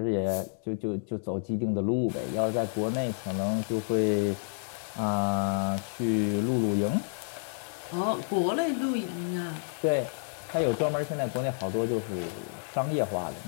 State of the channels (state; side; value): silent; right; digital silence